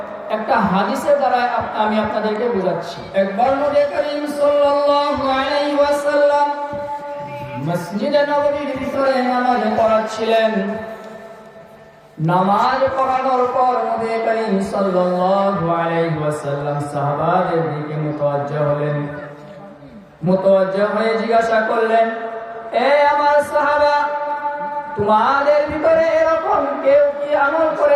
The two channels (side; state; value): both; identical; correlation 1.00